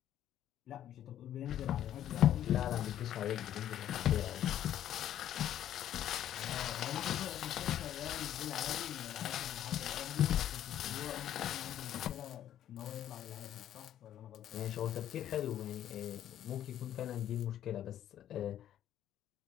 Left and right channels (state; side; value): quieter; right; 11.3 dB